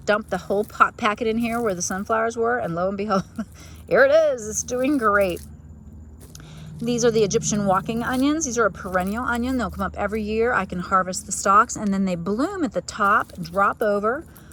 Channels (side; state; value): both; identical; correlation 1.00